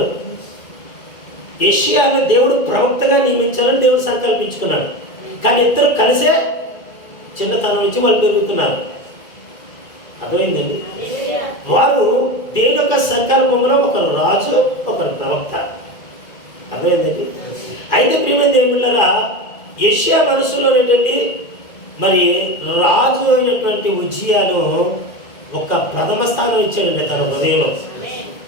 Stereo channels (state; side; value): late; right; 2.0 ms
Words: యెషయాను దేవుడు ప్రవక్తగా నియమించాలని దేవుడు సంకల్పించుకున్నాడు. కానీ ఇద్దరు కలిసే చిన్నతనం నుంచి వాళ్ళు పెరుగుతున్నారు. అర్థమైందండి? వారు దేవుని యొక్క సంకల్పంలో ఒకరు రాజు, ఒకరు ప్రవక్త. అర్థమైందండి? అయితే ప్రియమైన దేవుళ్ళారా, యెషయా మనసులో ఏంటండి, మరి రాజు అయినటువంటి ఉజ్జియాను ఒక ప్రథమ స్థానం ఇచ్చాడండి తన హృదయంలో.